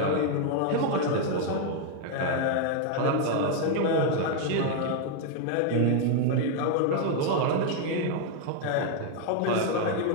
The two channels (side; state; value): both; different; correlation 0.00